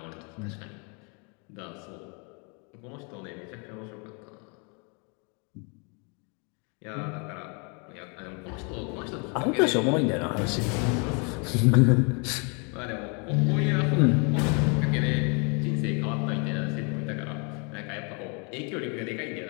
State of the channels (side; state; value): right; quieter; 34.9 dB